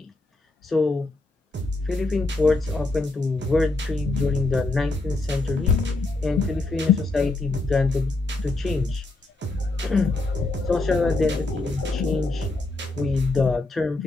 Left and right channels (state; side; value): quieter; right; 3.1 dB